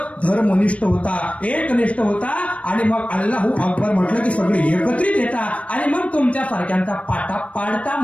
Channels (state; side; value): late; right; 0.064 ms